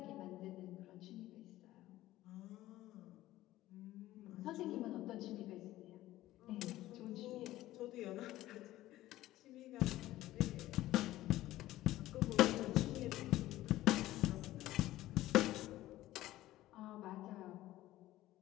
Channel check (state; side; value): quieter; right; 15.5 dB